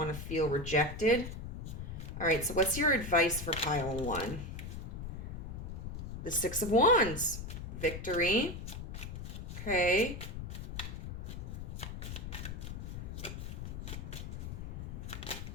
to feel rejected. All right, so what's your advice for pile 1? The 6 of Wands. Victory. Okay.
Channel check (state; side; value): noise; left; rumble, 7 dB below the sound